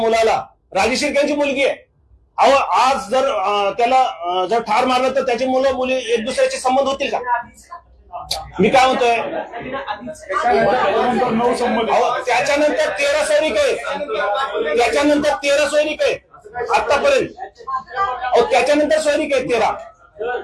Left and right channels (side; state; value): both; identical; correlation 1.00